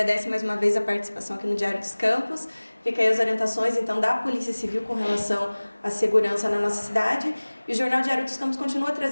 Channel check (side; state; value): both; inverted; correlation -1.00